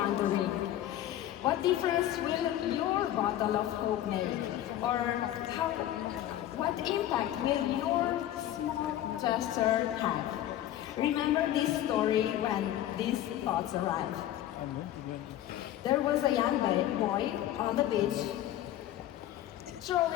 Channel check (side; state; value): right; quieter; 12.7 dB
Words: What difference will your bottle of hope make? Or what impact will your small gesture have? Remember this story when these thoughts arrive. There was a young boy on the beach